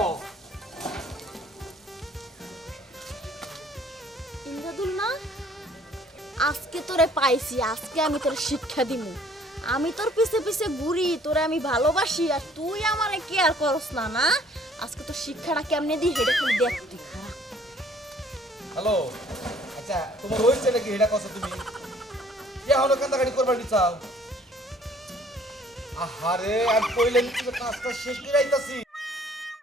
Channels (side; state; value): both; normal; correlation 0.58